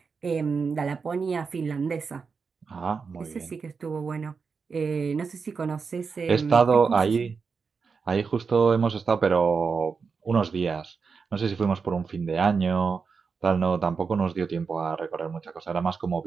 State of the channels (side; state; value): left; quieter; 5.3 dB